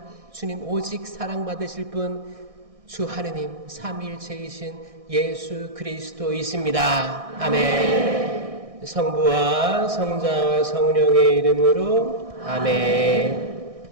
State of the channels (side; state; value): left; late; 1.6 ms